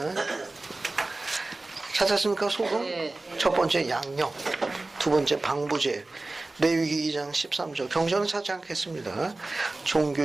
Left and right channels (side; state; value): left; quieter; 3.1 dB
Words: 찾았습니까? 소금? 네. 첫 번째 양념, 두 번째 방부제, 레위기 2장 13절. 경전은 찾지 않겠습니다.